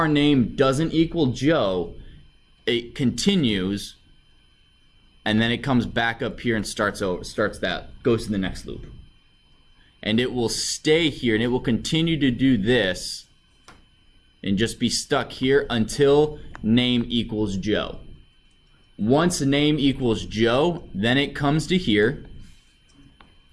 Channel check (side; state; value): both; identical; correlation 1.00